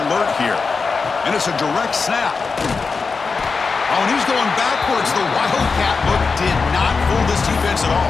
here. And it's a direct snap. Oh, and he's going backwards. The Wildcat look did not fool this defense at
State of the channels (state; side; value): quieter; right; 4.7 dB